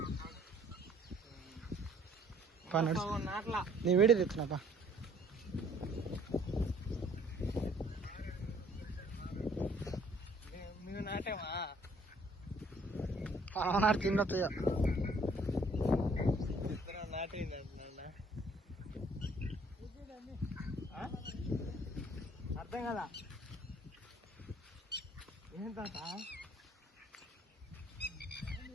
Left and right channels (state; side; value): normal; both; correlation 0.59